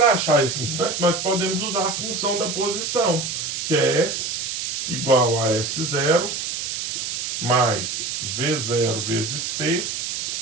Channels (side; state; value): right; noise; hiss, 3 dB below the sound